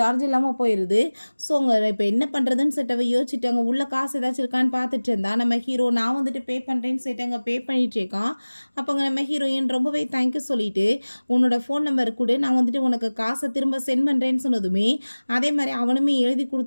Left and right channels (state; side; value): inverted; both; correlation -1.00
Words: இல்லாமல் போயிடுது. ஸோ அங்கே இப்போ என்ன பண்ணுறதுன்னு சொல்லிட்டு அவள் யோசிச்சுட்டு அங்கே உள்ள காசு ஏதாச்சும் இருக்கான்னு பார்த்துட்டு இருந்தா. நம்ம ஹீரோ நான் வந்துட்டு பே பண்ணுறேன்னு சொல்லிட்டு அங்கே பே பண்ணிட்டு இருக்கான். அப்போ அங்கே நம்ம ஹீரோயின் ரொம்பவே தேங்க்யூ சொல்லிட்டு, உன்னோட ஃபோன் நம்பர் கொடு, நான் வந்துட்டு உனக்கு காசை திரும்ப சென்ட் பண்ணுறேன்னு சொன்னதுமே அதே மாதிரி அவனுமே எழுதி